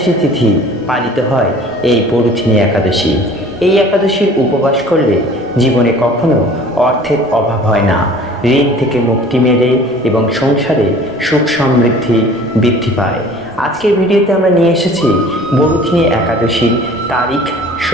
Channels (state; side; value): normal; both; correlation 0.47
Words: তিথি পালিত হয় এই বরুথিনী একাদশী। এই একাদশীর উপবাস করলে জীবনে কখনো অর্থের অভাব হয় না, ঋণ থেকে মুক্তি মেলে এবং সংসারে সুখ সমৃদ্ধি বৃদ্ধি পায়। আজকের ভিডিওতে আমরা নিয়ে এসেছি বরুথিনী একাদশীর তারিখ,